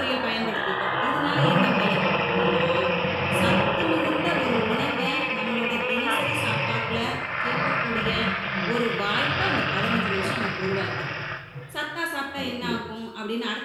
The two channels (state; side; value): identical; both; correlation 1.00